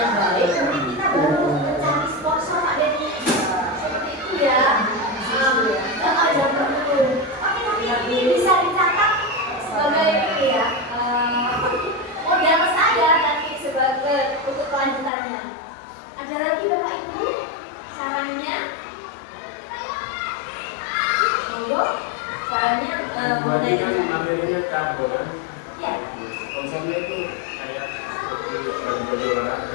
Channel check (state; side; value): drops out; right; at 15.1 s